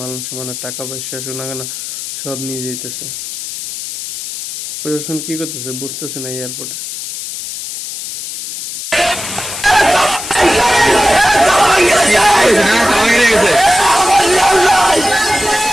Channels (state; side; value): noise; left; hiss, 8 dB below the sound